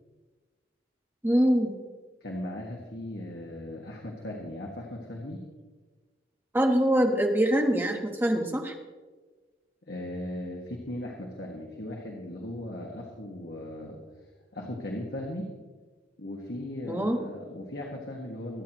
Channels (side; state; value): both; normal; correlation 0.83